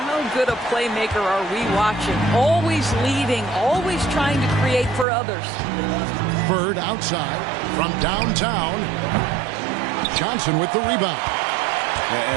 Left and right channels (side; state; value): left; drops out; at 5.1 s